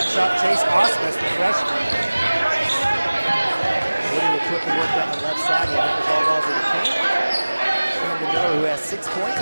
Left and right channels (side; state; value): both; inverted; correlation -1.00